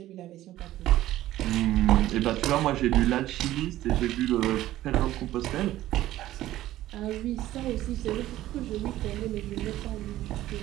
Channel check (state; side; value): quieter; left; 14.6 dB